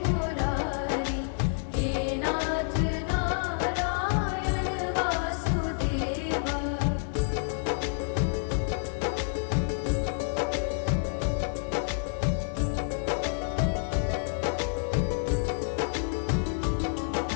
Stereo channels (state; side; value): silent; right; digital silence